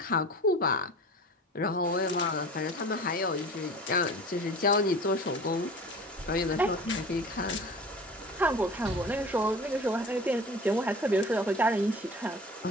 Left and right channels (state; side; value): normal; both; correlation 0.39